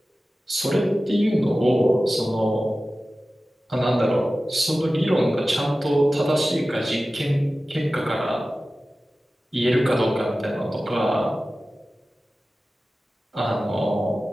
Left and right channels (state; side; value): normal; both; correlation 0.95